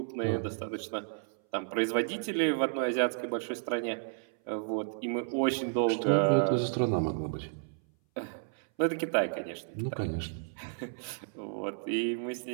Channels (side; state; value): left; silent; 56 dB below the other